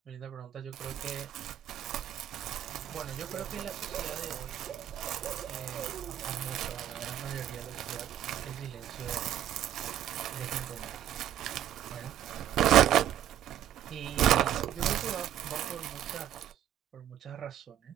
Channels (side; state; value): left; quieter; 11.4 dB